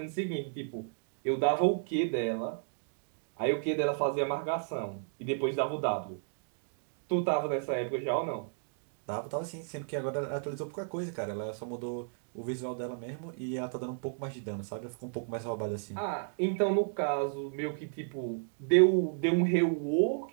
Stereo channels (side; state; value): left; silent; digital silence